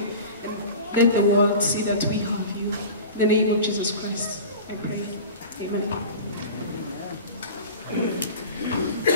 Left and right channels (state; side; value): inverted; both; correlation -0.35